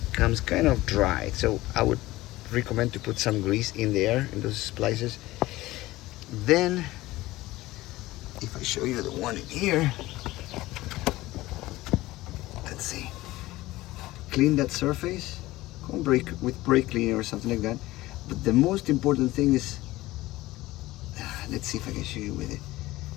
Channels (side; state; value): right; quieter; 18.0 dB